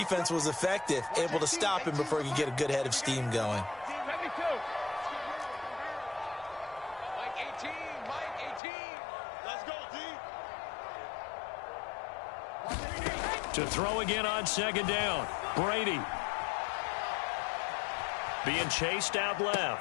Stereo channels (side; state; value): right; drops out; at 8.6 s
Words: was effective, able to stop him before he could get a good head of steam going. Mike 18. Let's go, D. To throw again on 2nd down. Brady. Being chased out